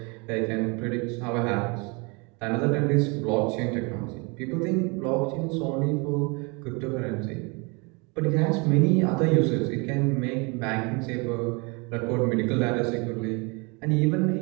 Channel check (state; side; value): quieter; left; 30.1 dB